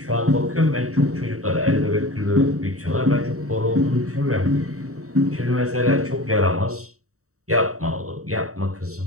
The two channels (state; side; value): late; left; 0.64 ms